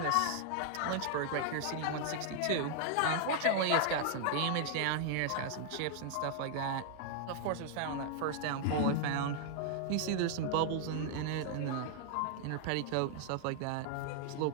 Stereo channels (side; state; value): both; different; correlation -0.01